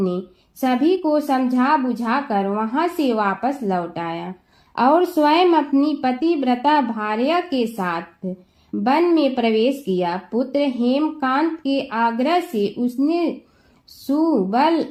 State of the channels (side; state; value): both; identical; correlation 1.00